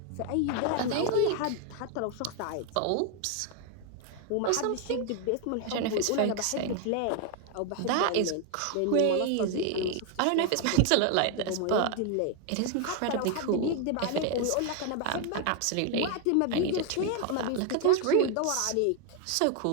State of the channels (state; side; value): different; both; correlation 0.01